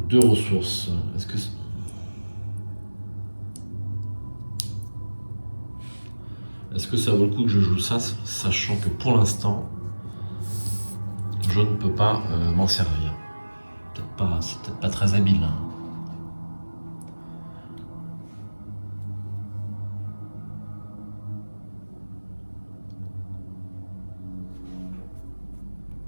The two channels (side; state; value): both; inverted; correlation -1.00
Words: 2 ressources. Est-ce que ça vaut le coup que je joue ça, sachant que pour l'instant, je ne peux pas m'en servir. C'est peut-être pas très habile. Hein.